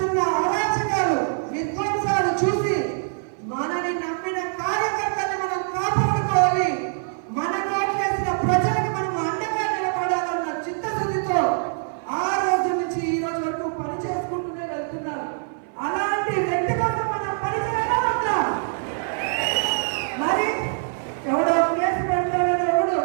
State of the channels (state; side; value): silent; left; 57 dB below the other